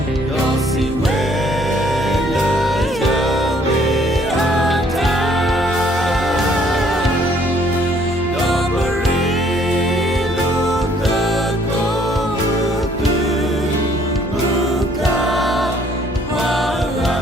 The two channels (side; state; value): both; normal; correlation 0.62